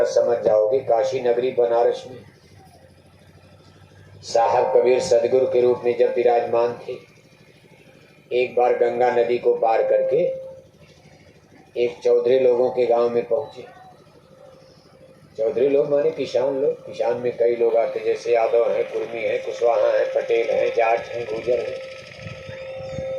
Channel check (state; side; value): identical; both; correlation 1.00